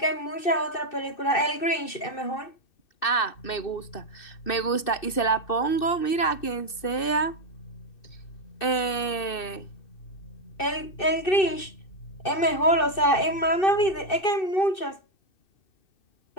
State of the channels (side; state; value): right; late; 2.6 ms